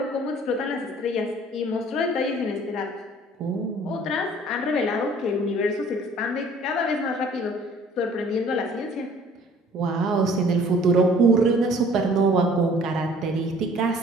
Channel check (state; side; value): normal; both; correlation 0.54